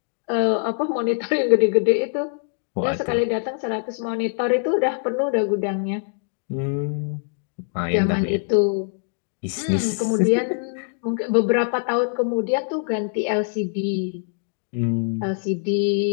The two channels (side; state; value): right; silent; 63 dB below the other